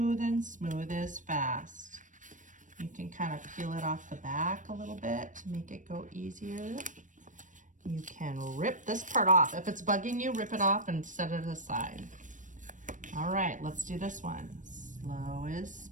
and smooth is fast. You can kind of peel it off the back a little bit to make it go easier. You can rip this part off. If it's bugging you, rip it off and set it aside. All right, let's do this one. Slow is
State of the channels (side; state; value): left; late; 0.37 ms